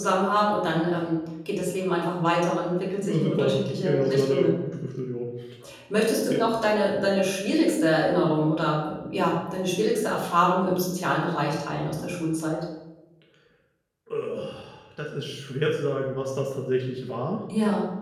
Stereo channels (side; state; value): both; identical; correlation 1.00